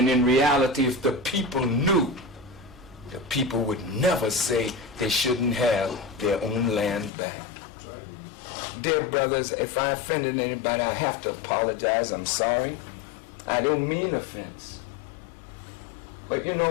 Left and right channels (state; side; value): drops out; right; at 7.1 s